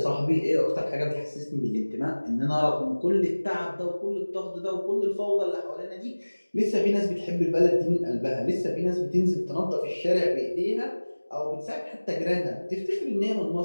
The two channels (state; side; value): inverted; both; correlation -1.00